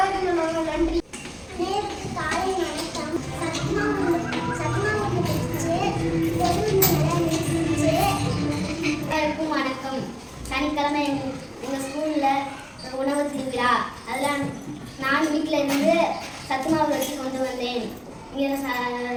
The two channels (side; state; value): both; identical; correlation 1.00